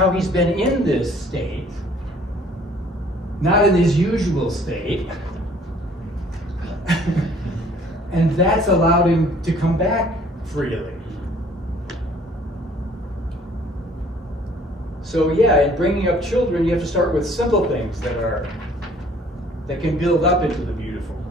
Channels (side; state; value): both; normal; correlation 0.56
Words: he's been in this state, not in his usual state, and that's allowed him to come back freely. So yeah, in bringing up children, you have to start with simple things that can build up into the beautiful